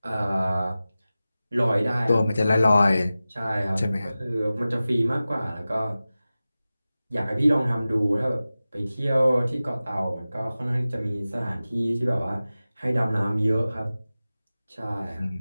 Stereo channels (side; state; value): both; inverted; correlation -0.96